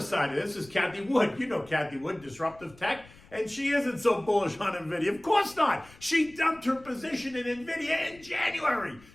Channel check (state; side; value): noise; left; rumble, 24 dB below the sound